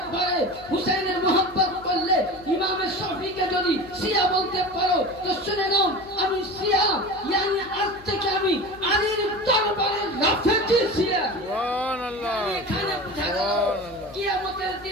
পারে, হুসাইনের মোহাব্বত করলে ইমামে শাফিঈকে যদি শিয়া বলতে পারো তো শুনে নাও আমি শিয়া, yani আজ থেকে আমি আলীর দরবারে রাফেজি শিয়া। সুবহানাল্লাহ এখানে বুঝা গেল কিয়ামতের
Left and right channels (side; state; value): left; noise; hum, 22 dB below the sound